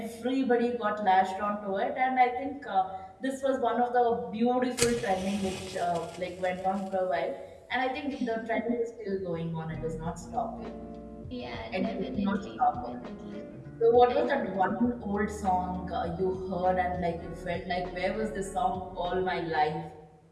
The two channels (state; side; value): identical; both; correlation 1.00